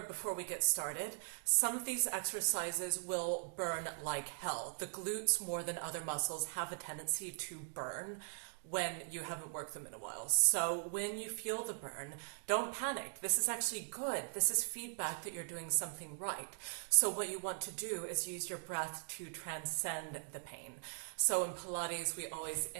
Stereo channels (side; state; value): left; silent; digital silence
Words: before we get started. Some of these exercises will burn like hell. The glutes, more than other muscles, have a tendency to burn when you haven't worked them in a while. So when you feel the burn, don't panic. This is actually good. This is feedback that you're doing something right. So what you want to do is use your breath to transcend the pain. So in Pilates, we always